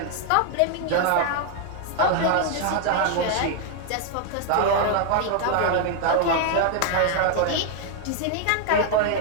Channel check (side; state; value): both; different; correlation 0.00